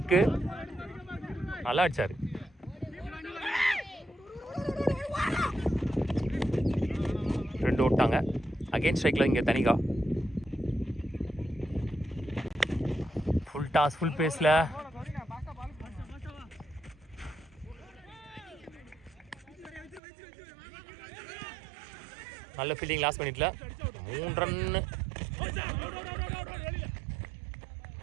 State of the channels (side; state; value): left; drops out; at 20.0 s